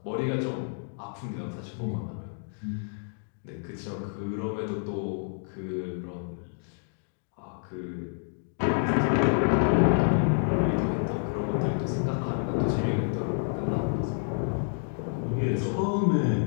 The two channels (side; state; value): right; silent; digital silence